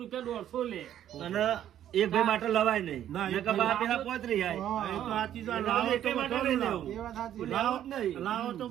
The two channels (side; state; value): left; quieter; 11.0 dB